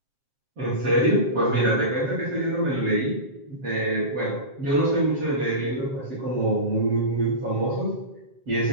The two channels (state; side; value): late; left; 7.5 ms